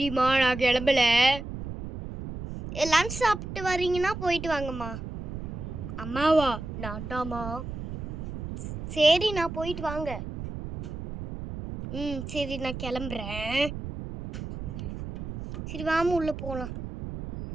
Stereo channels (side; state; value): right; noise; rumble, 8 dB below the sound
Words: நான் கிளம்பல. லன்ச் சாப்பிட்டு வரீங்கன்னா போயிட்டு வாங்கம்மா. அம்மாவா? நான்டாமா. சரி நான் போயிட்டு வாங்க. சரி நான் கிளம்புறேன். சரி வாமா உள்ளே போகலாம்.